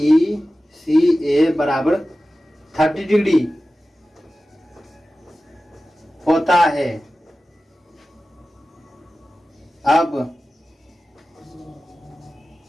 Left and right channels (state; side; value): normal; both; correlation 0.95